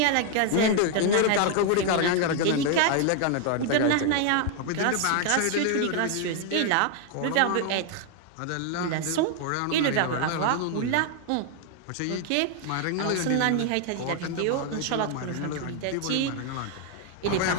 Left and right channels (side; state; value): both; different; correlation 0.00